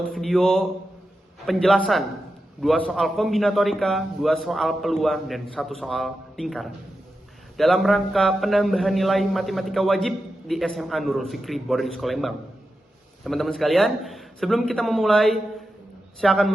video penjelasan 2 soal kombinatorika, 2 soal peluang, dan 1 soal lingkaran. Dalam rangka penambahan nilai matematika wajib di SMA Nurul Fikri Boarding School Lembang. Teman-teman sekalian, sebelum kita memulai, saya akan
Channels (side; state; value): both; normal; correlation 0.90